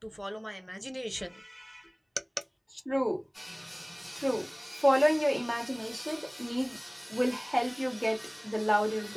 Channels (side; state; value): both; identical; correlation 1.00